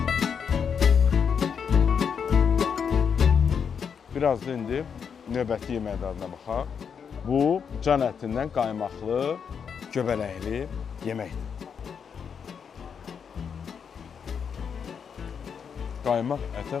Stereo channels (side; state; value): right; quieter; 6.9 dB